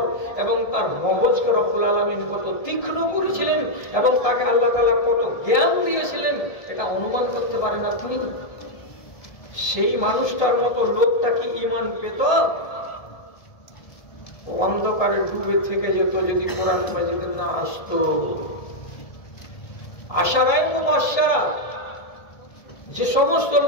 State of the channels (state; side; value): late; right; 1.3 ms